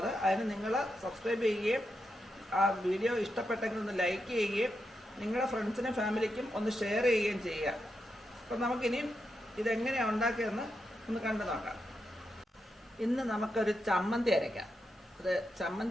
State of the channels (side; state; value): both; normal; correlation 0.85